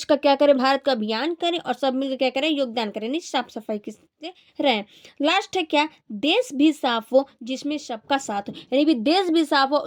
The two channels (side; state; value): both; identical; correlation 1.00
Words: का क्या करें, भारत का अभियान करें और सब मिलकर क्या करें, योगदान करें, यानी साफ सफाई से रहें। लास्ट है क्या, देश भी साफ हो जिसमें सबका साथ हो, यानी भी देश भी साफ हो